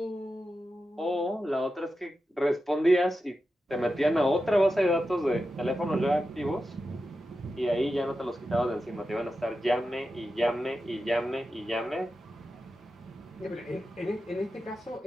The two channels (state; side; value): normal; both; correlation 0.91